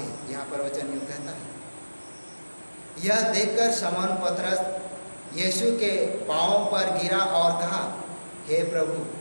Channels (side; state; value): both; inverted; correlation -1.00